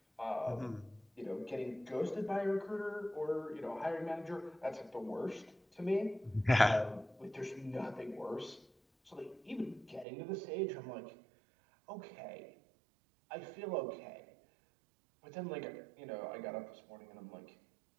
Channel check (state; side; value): drops out; left; at 10.1 s